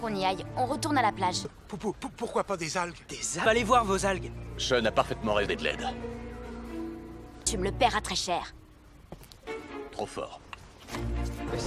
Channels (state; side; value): identical; both; correlation 1.00